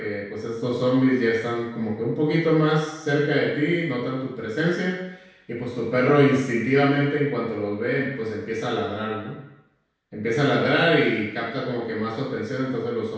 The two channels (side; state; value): both; identical; correlation 1.00